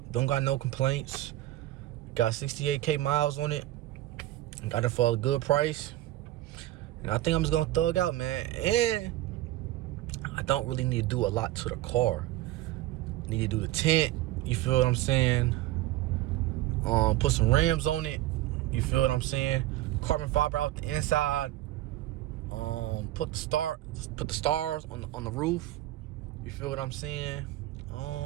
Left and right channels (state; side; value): quieter; left; 15.5 dB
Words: Don't got no complaints. Got 68K miles on it. Got it for a good price. And I think I'm just going to thug out, man. And I don't really need to do a lot to the car. Need to do the tint. You feel what I'm saying? Put some rims on it. You feel what I'm saying? Carbon fiber out the inside. Put the stars on the roof. You feel what I'm saying?